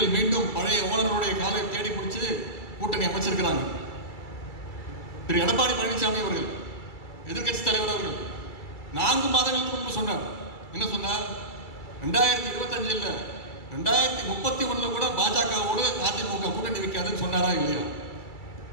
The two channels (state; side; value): late; right; 2.3 ms